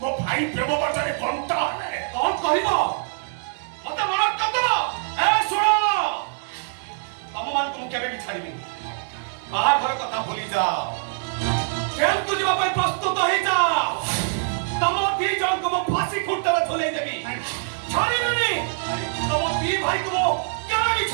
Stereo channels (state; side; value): silent; left; digital silence